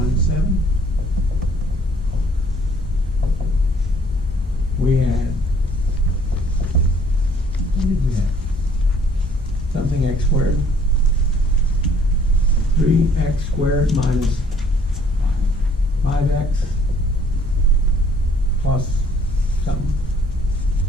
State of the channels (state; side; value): normal; both; correlation 0.60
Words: 7. We had, what did we have? Something x squared. 3x squared minus 5x plus something.